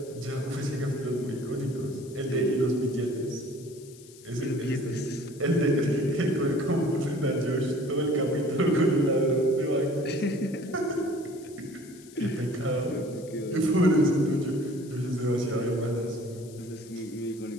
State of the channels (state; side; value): noise; left; hiss, 22 dB below the sound